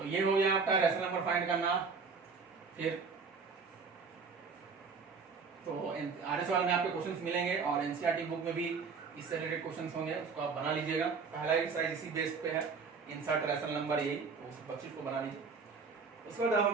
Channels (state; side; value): quieter; left; 5.1 dB